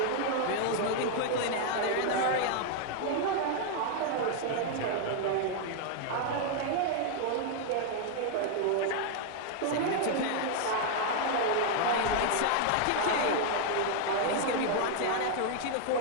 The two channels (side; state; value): both; different; correlation 0.00